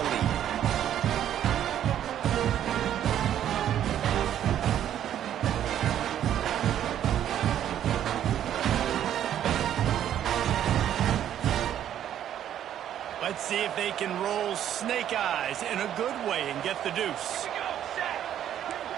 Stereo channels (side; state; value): left; quieter; 10.7 dB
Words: lead. Let's see if they can roll snake eyes in a good way and get the deuce.